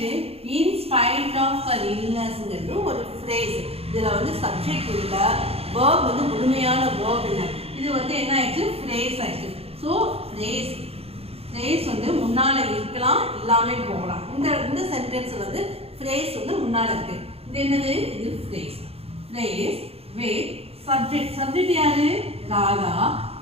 இன்ஸ்பைட் ஆஃப் ஹர் இல்னஸ்ங்கிறது ஒரு ஃப்ரேஸ். இதில் வந்து சப்ஜெக்ட் இல்லை, வேர்ப் வந்து முழுமையான வேர்ப் இல்லை. இது வந்து என்ன ஆயிடுச்சு, ஃப்ரேஸ் ஆயிடுச்சு. ஸோ ஃப்ரேஸ் ஃப்ரேஸ் வந்து முன்னால் இருக்கலாம், இல்லாமல் போகலாம். இந்த சென்டென்ஸ் வந்து ஃப்ரேஸ் வந்து முன்னால் இருக்கு. இது என்னது, இது phrase. Phrase with subject. Subject யாரு, ராதா.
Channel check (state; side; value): late; left; 0.29 ms